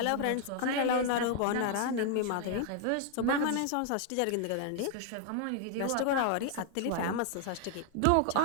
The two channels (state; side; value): different; both; correlation 0.00